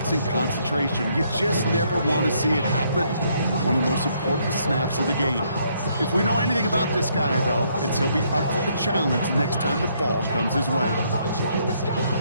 in concentration. You just never want to see it happen. One of the most important snaps of the game. If we know anything about this guy, though, it's he'll be up for the challenge next time the ball comes his way.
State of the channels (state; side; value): inverted; both; correlation -0.70